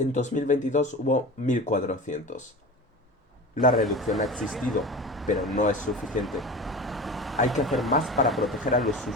2022 hubo 1.400. La reducción ha existido, pero no es suficiente. Hay que hacer más para proteger a los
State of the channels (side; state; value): both; normal; correlation 0.33